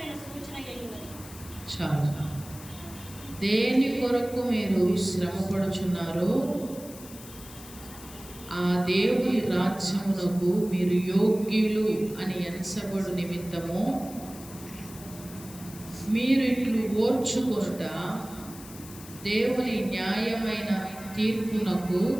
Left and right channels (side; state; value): left; noise; hiss, 17 dB below the sound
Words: సూచన అయినది. చాలా. దేని కొరకు మీరు శ్రమపడుచున్నారో ఆ దేవుని రాజ్యమునకు మీరు యోగ్యులు అని ఎంచబడు నిమిత్తము మీరు ఇట్లు ఓర్చుకొనుట దేవుని న్యాయమైన తీర్పునకు